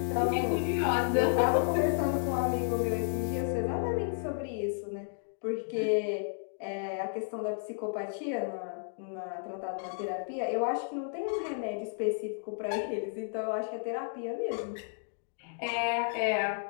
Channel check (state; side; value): silent; right; digital silence